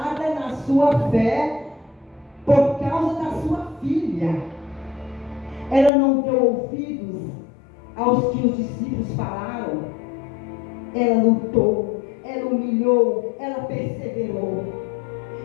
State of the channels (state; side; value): drops out; right; at 5.9 s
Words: na sua fé por causa da sua filha. Ela não deu ouvidos aos que os discípulos falaram. Ela lutou, ela humilhou, ela perseverou.